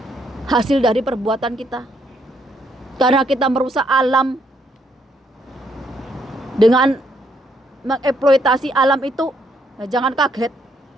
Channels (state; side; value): normal; both; correlation 0.72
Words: hasil dari perbuatan kita. Karena kita merusak alam dengan mengeksploitasi alam itu, nah jangan kaget.